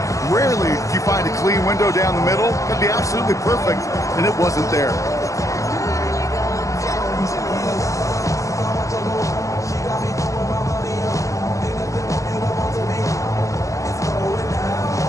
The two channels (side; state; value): right; late; 0.15 ms